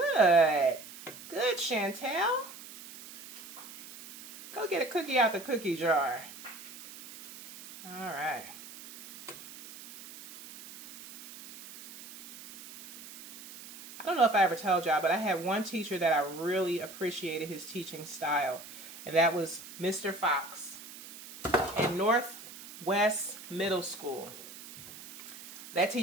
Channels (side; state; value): right; noise; hiss, 15 dB below the sound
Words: Good, Chantel. Go get a cookie out the cookie jar. All right. I don't know if I ever told y'all, but I had one teacher that I really appreciated his teaching style, and that was Mr. Fox in Northwest Middle School. That